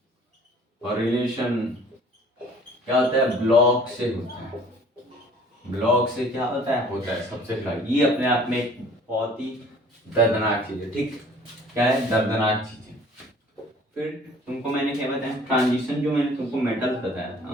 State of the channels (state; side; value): normal; both; correlation 0.52